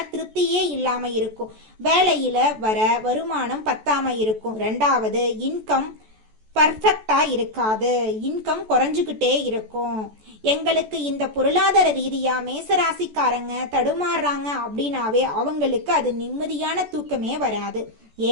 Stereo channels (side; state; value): left; late; 14 ms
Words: திருப்தியே இல்லாம இருக்கும், வேலையில வர வருமானம் பத்தாம இருக்கும், ரெண்டாவது இன்கம் பர்ஃபெக்டா இருக்காது, இன்கம் குறைஞ்சுக்கிட்டே இருக்கும். எங்களுக்கு இந்த பொருளாதார ரீதியா மேசராசிக்காரங்க தடுமாறுறாங்க அப்படின்னாவே அவங்களுக்கு அது நிம்மதியான தூக்கமே வராது.